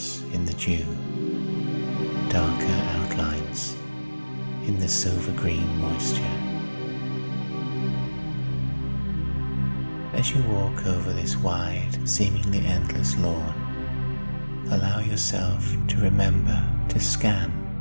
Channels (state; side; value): inverted; both; correlation -1.00